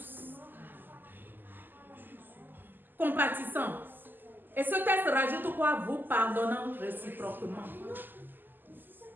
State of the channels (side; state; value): left; late; 0.090 ms